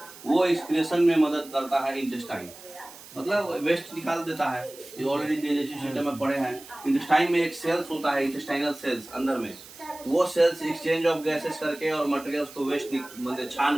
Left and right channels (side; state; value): right; noise; hiss, 18 dB below the sound